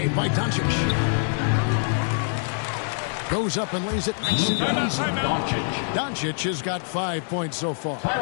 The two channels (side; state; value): right; silent; 62 dB below the other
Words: by Doncic. Goes up and lays it nice and easy. Doncic has got 5 points so far.